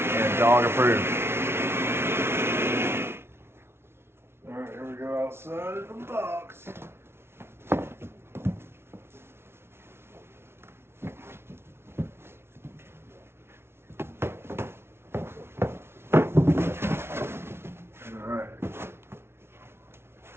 and dog approved. Alright, here we go outside of the box. Alright.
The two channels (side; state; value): left; late; 0.12 ms